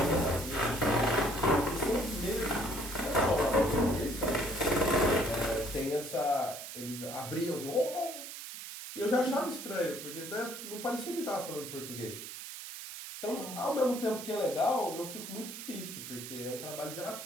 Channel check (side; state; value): right; noise; hiss, 10 dB below the sound